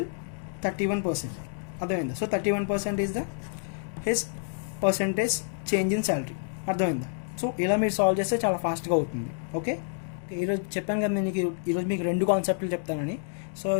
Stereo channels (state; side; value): silent; right; digital silence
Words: 31%. అర్థమైందా? So 31% is the his percentage change in salary. అర్థమైందా? సో ఇలా మీరు సాల్వ్ చేస్తే చాలా ఫాస్ట్గా అవుతుంది. ఓకే, ఈరోజు చెప్పాను కదా నేను ఈరోజు మీకు 2 కాన్సెప్ట్లు చెప్తానని. సో